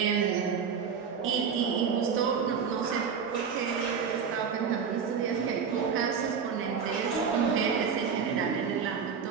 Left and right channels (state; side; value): quieter; left; 6.5 dB